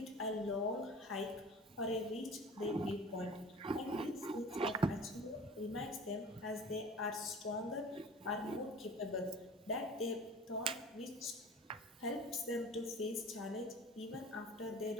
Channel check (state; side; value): normal; both; correlation 0.41